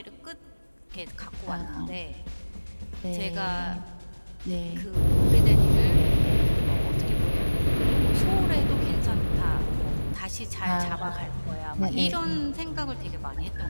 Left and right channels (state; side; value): inverted; both; correlation -1.00